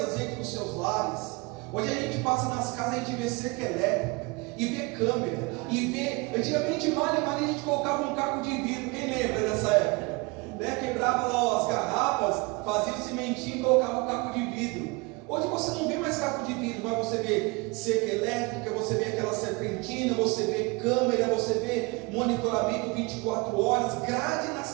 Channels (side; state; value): left; quieter; 26.6 dB